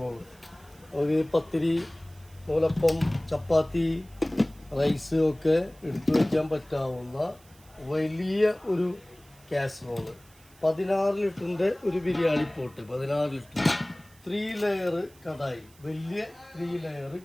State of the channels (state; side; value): noise; right; hiss, 27 dB below the sound